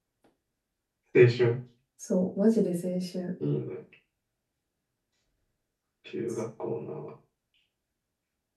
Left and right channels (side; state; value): both; identical; correlation 1.00